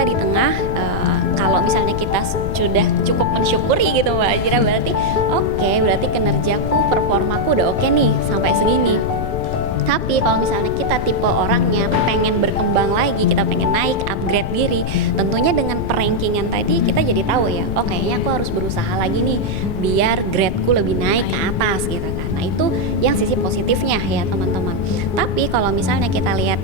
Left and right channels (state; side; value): noise; left; rumble, 4 dB below the sound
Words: di tengah, kalau misalnya kita sudah cukup mensyukuri gitu Mbak Ajira, berarti oke, berarti kinerjaku, performaku udah oke nih sampai segini. Tapi kalau misalnya kita tipe orangnya pengen berkembang lagi, kita pengen naik, upgrade diri, tentunya dengan perankingan tadi kita jadi tahu ya, oh kayaknya aku harus berusaha lagi nih biar gradeku lebih naik ke atas gitu kan. Nah itu yang sisi positifnya ya teman-teman. Tapi kalau misalnya kita